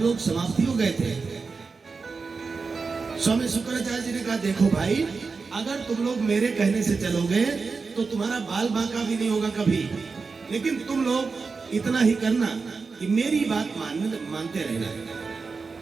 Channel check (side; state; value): left; quieter; 4.6 dB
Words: समाप्ति हो गए थे। स्वामी शुक्राचार्य जी ने कहा देखो भाई, अगर तुम लोग मेरे कहने से चलोगे तो तुम्हारा बाल बांका भी नहीं होगा कभी, लेकिन तुम लोग इतना ही करना कि मेरी बात मानते रहना।